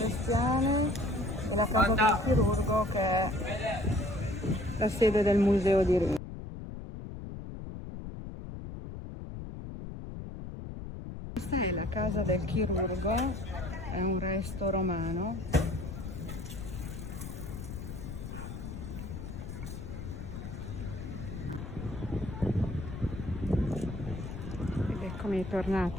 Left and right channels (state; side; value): noise; left; rumble, 8 dB below the sound